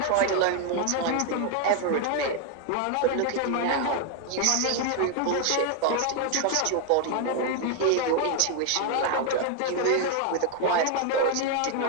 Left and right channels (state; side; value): different; both; correlation 0.01